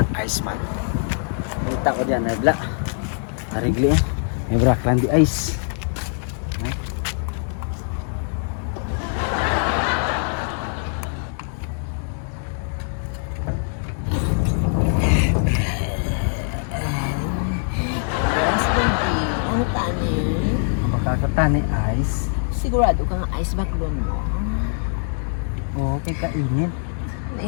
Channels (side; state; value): right; silent; 64 dB below the other